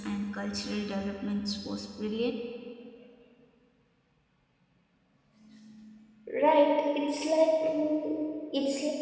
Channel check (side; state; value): both; identical; correlation 1.00